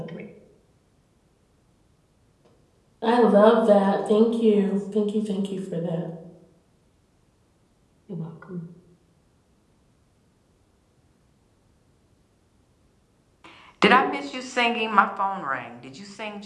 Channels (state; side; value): identical; both; correlation 1.00